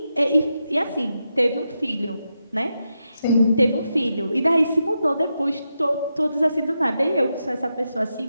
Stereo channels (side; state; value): both; inverted; correlation -0.87